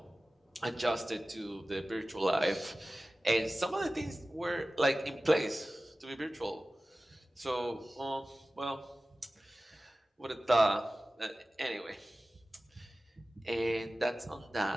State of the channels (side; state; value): both; normal; correlation 0.96